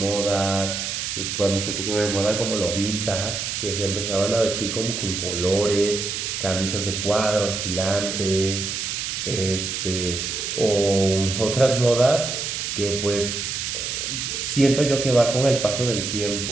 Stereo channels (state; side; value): noise; right; hiss, 3 dB below the sound